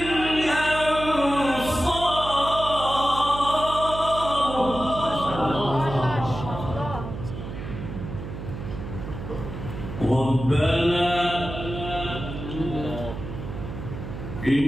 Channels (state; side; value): noise; right; hum, 8 dB below the sound